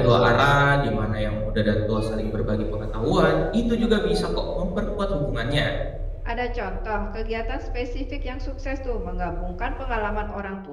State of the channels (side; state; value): both; identical; correlation 1.00